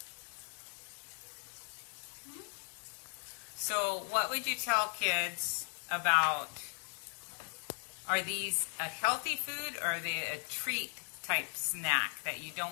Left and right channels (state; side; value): quieter; right; 39.7 dB